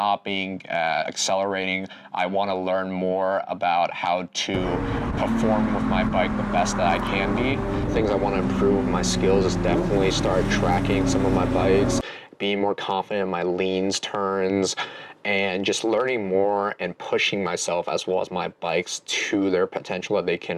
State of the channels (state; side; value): identical; both; correlation 1.00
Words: accelerating. I want to learn more about how to perform with my bike the best that I can be. Things I want to improve with my skills is definitely start tracking some of my bikes, being more confident in my leans, turns, and just learning more and pushing myself as well as my bikes to their potential that they